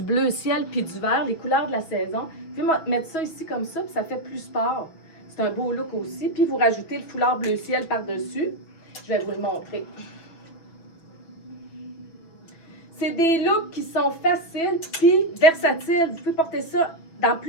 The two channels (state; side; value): late; right; 6.1 ms